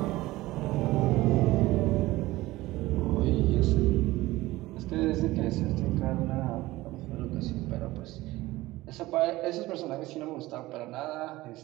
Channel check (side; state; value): left; quieter; 18.3 dB